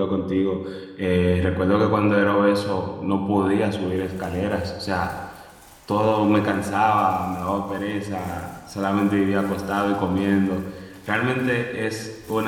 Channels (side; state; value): both; identical; correlation 1.00